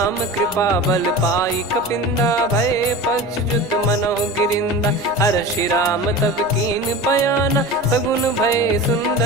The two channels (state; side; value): noise; right; hum, 29 dB below the sound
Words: कृपा बल पाई कपिंदा भय पक्ष जुत मनो गिरिंदा। हर्षि राम तब कीन पयाना सगुन भय